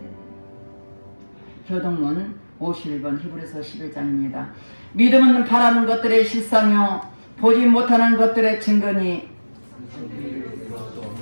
교동문 51번 히브리서 11장입니다. 믿음은 바라는 것들의 실상이요 보지 못하는 것들의 증거니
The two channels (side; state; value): both; inverted; correlation -1.00